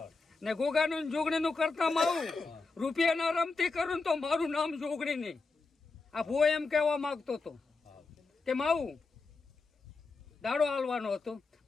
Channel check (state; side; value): quieter; right; 4.0 dB